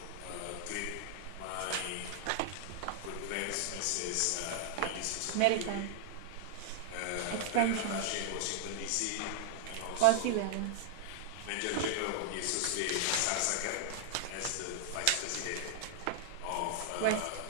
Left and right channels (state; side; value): different; both; correlation 0.00